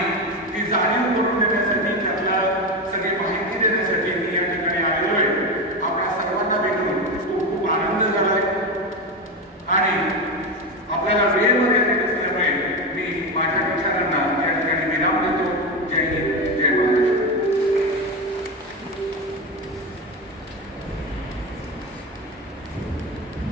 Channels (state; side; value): normal; both; correlation 0.17